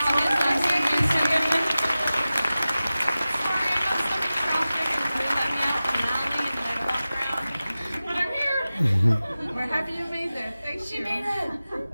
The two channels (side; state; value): both; inverted; correlation -0.95